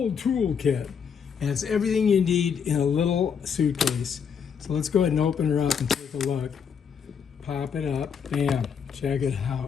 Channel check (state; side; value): quieter; right; 6.9 dB